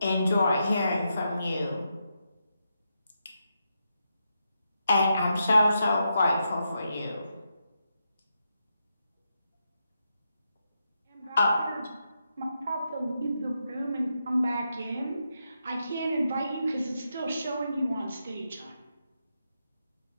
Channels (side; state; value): both; inverted; correlation -0.84